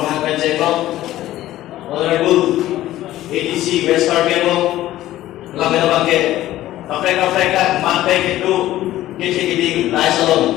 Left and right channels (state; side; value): quieter; right; 14.6 dB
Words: Kanjenglo Honorable ADC West Carbiano lamena bangke Afrika mantai itu kecil-kecil lai